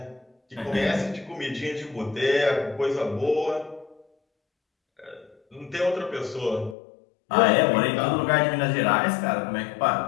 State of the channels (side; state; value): right; drops out; at 6.8 s